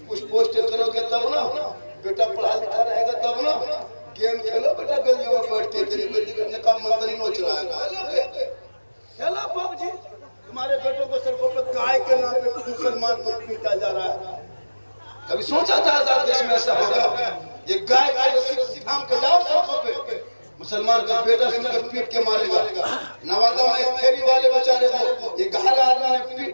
कुछ पोस्ट करोगे तब ना, बेटा पढ़ा लिखा रहेगा तब ना। गेम खेलो बेटा गलियों में बैठ के, तेरी बेटी का मंत्री नोच रहा है। खेलो पबजी, तुम्हारे बेटों को सड़कों पर गाय के नाम पे मुसलमान को पीटा जा रहा है। कभी सोचा था आजाद देश में ऐसा होगा? ये गाय का रस्सी थाम के जाओ सड़कों पे, मुसलमान का बेटा सुनकर पीट के मारेगा। नवादा में एक फेरी वाले बेचारे को ये घायल आदमी ने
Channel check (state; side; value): inverted; both; correlation -1.00